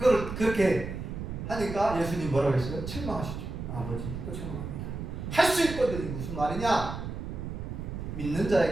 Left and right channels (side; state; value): right; noise; rumble, 7 dB below the sound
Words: 하니까 예수님 뭐라고 했어요? 책망하시죠. 아버지 또 책망합니다. 할 수 있거든. 무슨 말이냐? 믿는